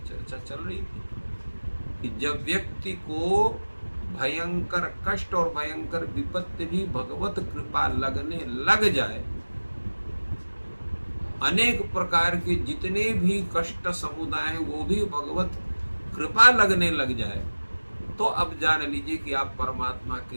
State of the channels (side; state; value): both; inverted; correlation -1.00